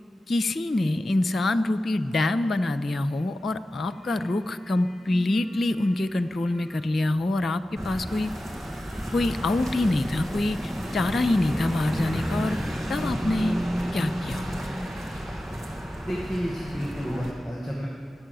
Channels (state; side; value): normal; both; correlation 0.94